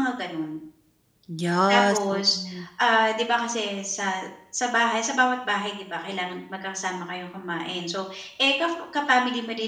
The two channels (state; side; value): identical; both; correlation 1.00